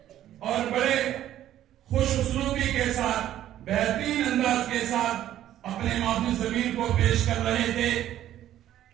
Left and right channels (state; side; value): quieter; left; 12.2 dB